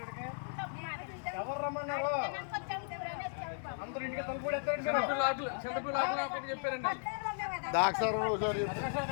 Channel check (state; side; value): silent; right; digital silence